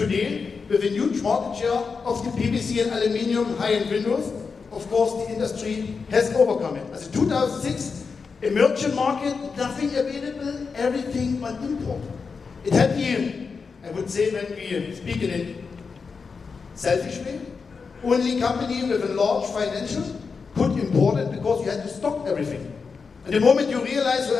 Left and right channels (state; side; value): quieter; right; 5.1 dB